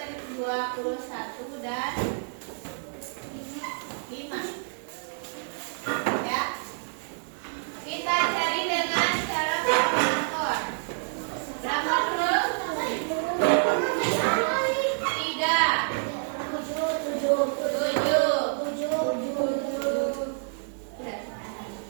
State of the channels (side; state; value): left; silent; 59 dB below the other